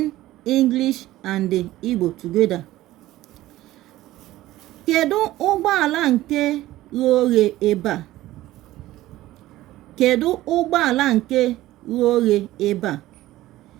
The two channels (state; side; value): quieter; left; 15.9 dB